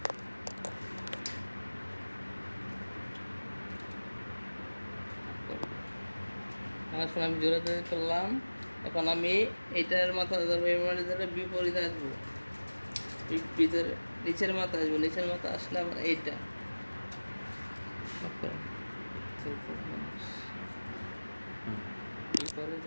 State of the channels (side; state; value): both; inverted; correlation -1.00